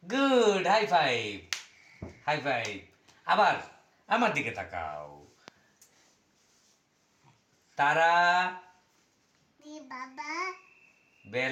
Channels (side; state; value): both; identical; correlation 1.00